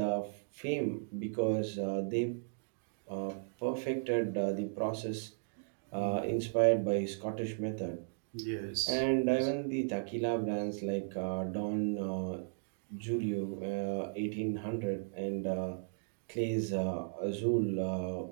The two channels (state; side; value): silent; left; digital silence